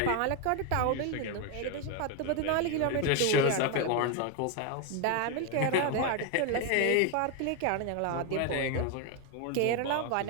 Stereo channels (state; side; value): different; both; correlation 0.01